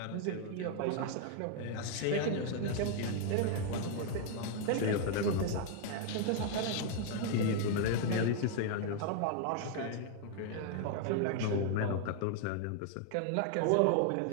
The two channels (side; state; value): both; different; correlation 0.00